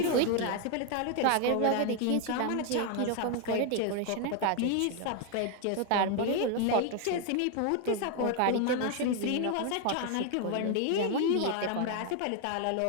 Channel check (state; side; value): different; both; correlation 0.01